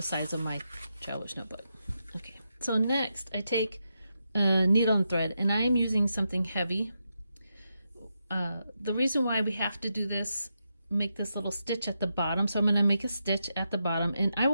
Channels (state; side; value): inverted; both; correlation -0.85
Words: size of my traveler's notebook. Okay, so next I take a needle and thread, and I am using something heavy. The reason why we have to do this, make this little stitch at the bottom, so I'm going to make a stitch at the bottom, and